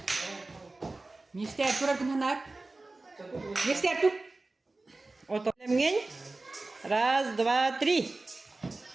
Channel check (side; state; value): left; quieter; 3.2 dB